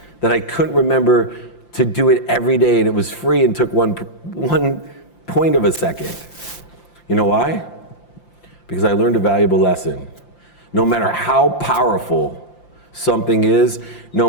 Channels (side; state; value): right; late; 5.8 ms